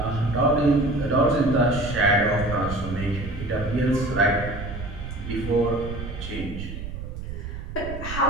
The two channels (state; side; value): noise; right; rumble, 8 dB below the sound